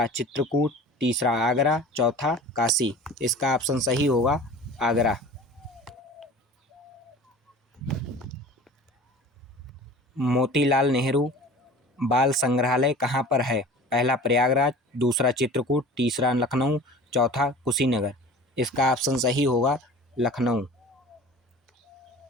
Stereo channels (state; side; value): normal; both; correlation 0.41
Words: चित्रकूट, तीसरा आगरा, चौथा काशी। इसका ऑप्शन सही होगा आगरा। मोतीलाल नेहरू बाल संग्रहालय कहाँ पर है? पहला प्रयागराज, दूसरा चित्रकूट, तीसरा लखनऊ, चौथा कुशीनगर। इसका ऑप्शन सही होगा लखनऊ।